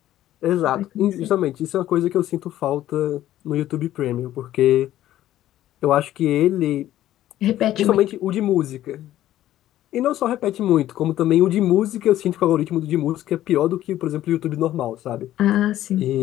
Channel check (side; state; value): right; quieter; 13.3 dB